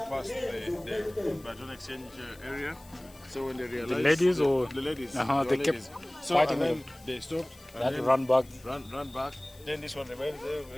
passed the baton exchange area. So when they realized... The ladies or... The ladies. They kept so fighting and then them. they stopped. They had to run back. Run back. Then this one remained there.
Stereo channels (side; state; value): left; noise; hiss, 24 dB below the sound